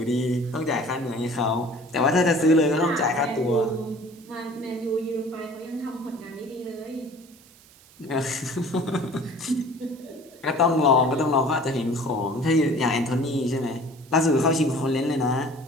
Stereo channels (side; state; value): right; noise; hiss, 26 dB below the sound